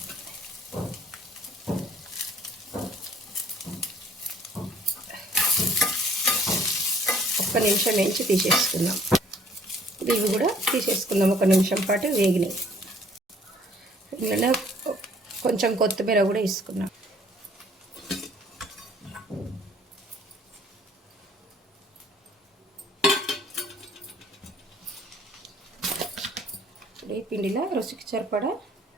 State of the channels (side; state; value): both; normal; correlation 0.58